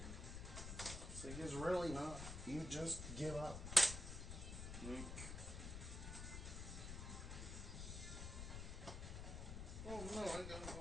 It's like, it's really not. You just give up. Like, oh no, I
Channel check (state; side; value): noise; left; rumble, 5 dB below the sound